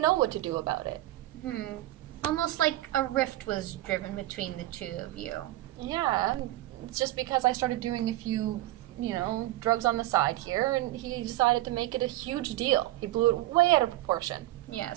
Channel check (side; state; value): left; quieter; 16.5 dB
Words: what to do about it. Almost like a rift was driven between the two of you. Yeah, it's just because I started doing a few drugs on the side here, and he decided to make it a huge deal. He blew it way out of proportion. Yeah,